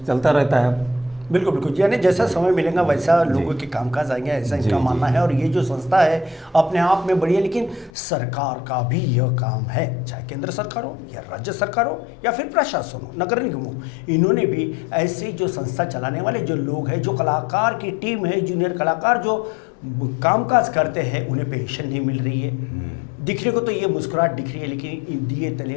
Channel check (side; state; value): right; drops out; at 7.9 s